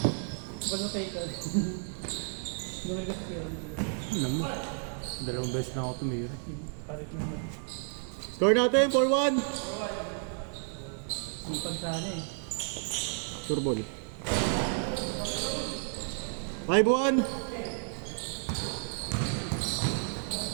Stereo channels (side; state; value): left; silent; 57 dB below the other